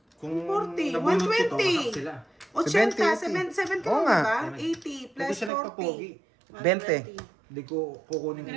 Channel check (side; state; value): left; drops out; at 5.5 s